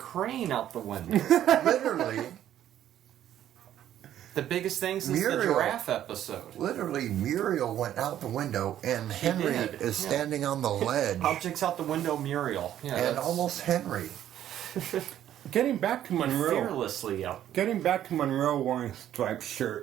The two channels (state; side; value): quieter; left; 11.4 dB